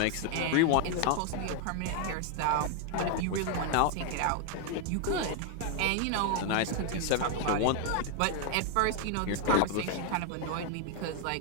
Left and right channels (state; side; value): different; both; correlation 0.00